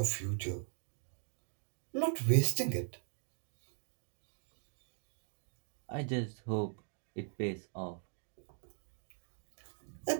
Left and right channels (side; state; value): left; silent; 51 dB below the other